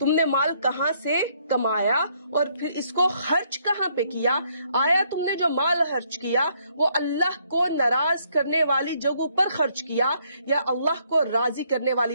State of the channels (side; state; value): both; inverted; correlation -0.70